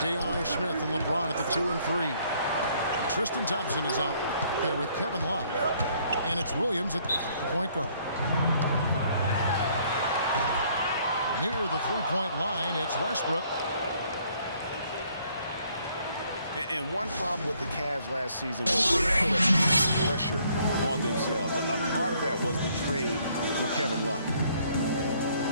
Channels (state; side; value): inverted; both; correlation -0.64